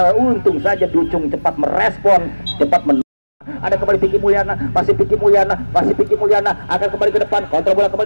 untung saja Ducung cepat merespon, ada kembali Piki Mulyana, masih Piki Mulyana akan kembali ke depan, kontrol bola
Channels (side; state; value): both; inverted; correlation -1.00